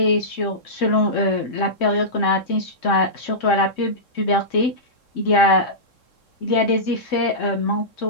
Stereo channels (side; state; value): right; late; 3.7 ms